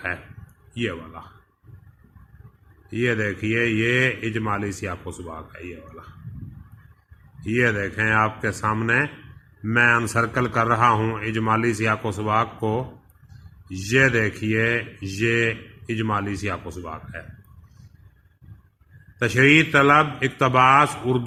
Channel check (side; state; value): both; identical; correlation 1.00